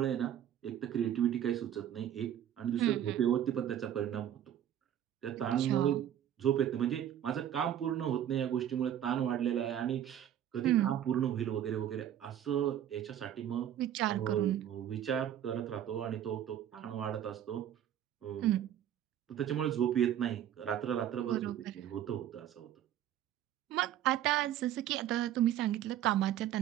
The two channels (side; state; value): left; quieter; 10.7 dB